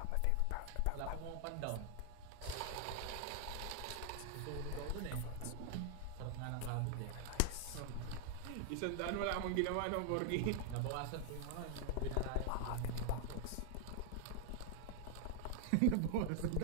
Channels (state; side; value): different; both; correlation 0.00